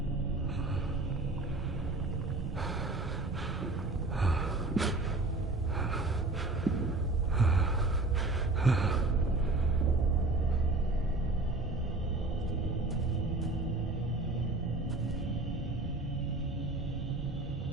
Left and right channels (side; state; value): left; quieter; 3.1 dB